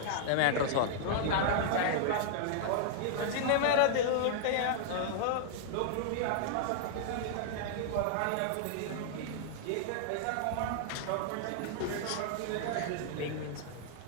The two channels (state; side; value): different; both; correlation -0.01